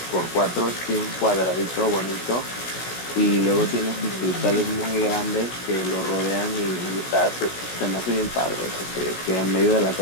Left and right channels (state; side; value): late; right; 16 ms